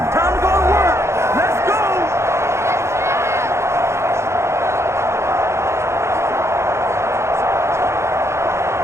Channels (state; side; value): late; left; 0.13 ms